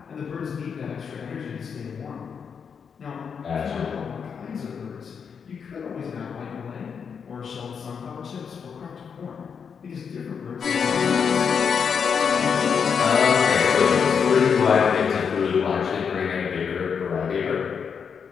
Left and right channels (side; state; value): right; quieter; 6.6 dB